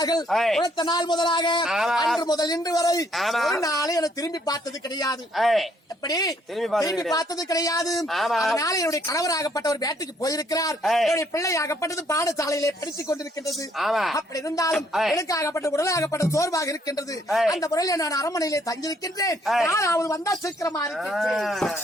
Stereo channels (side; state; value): both; normal; correlation 0.67